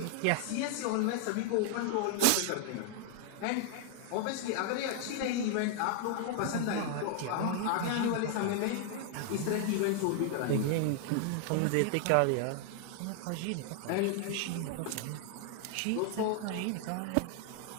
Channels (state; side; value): different; both; correlation 0.00